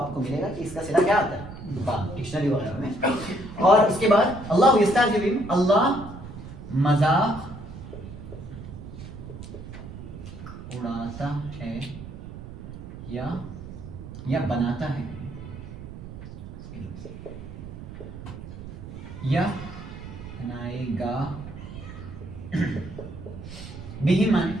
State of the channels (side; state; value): right; noise; rumble, 12 dB below the sound